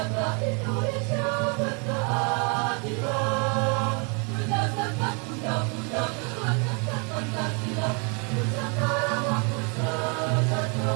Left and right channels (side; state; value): left; quieter; 35.3 dB